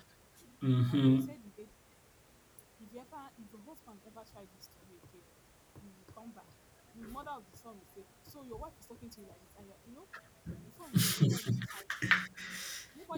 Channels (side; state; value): both; identical; correlation 1.00